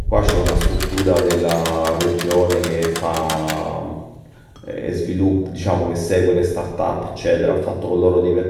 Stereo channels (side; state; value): both; identical; correlation 1.00